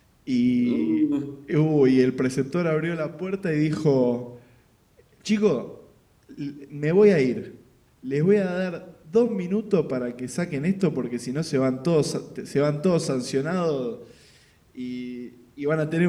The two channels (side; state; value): both; identical; correlation 1.00